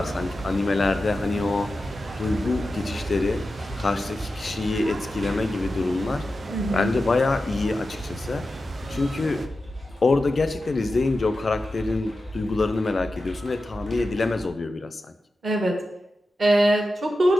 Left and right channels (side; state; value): both; normal; correlation 0.92